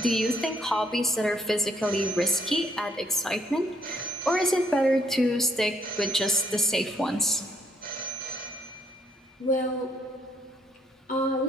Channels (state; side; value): normal; both; correlation 0.69